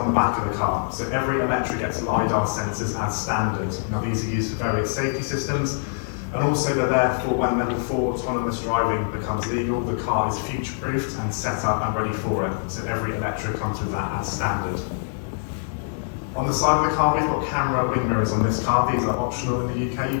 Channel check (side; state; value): right; silent; digital silence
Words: the back of the car. So every Eletre gets LiDAR sensors as standard. Now these are used for various safety systems, and also they're there for when level 4 autonomous driving becomes legal, the car is future-proofed and set up and ready for it. So every Eletre comes with that as standard. On the side of the car, we've got camera wing mirrors on this car. These are optional in the UK. You